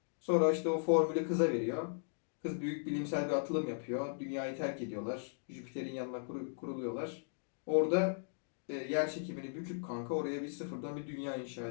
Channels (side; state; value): right; silent; digital silence